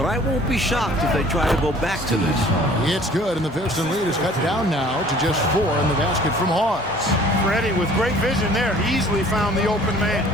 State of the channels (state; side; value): normal; both; correlation 0.52